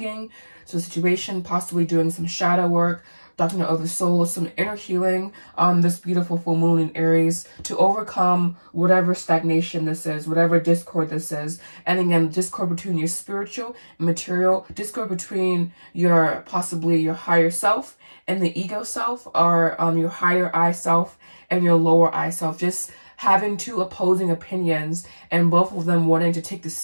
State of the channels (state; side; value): inverted; both; correlation -1.00